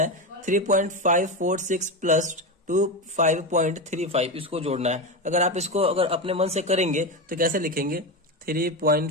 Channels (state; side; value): normal; both; correlation 0.16